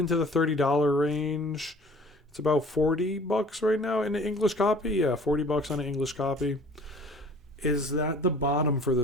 the $30 range. It's about $40 right now in the English copy. Yeah, $40 on an English copy. Is that the bottom for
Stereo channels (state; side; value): normal; both; correlation 0.49